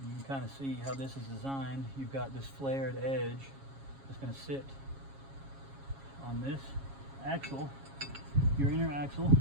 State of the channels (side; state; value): left; late; 7.3 ms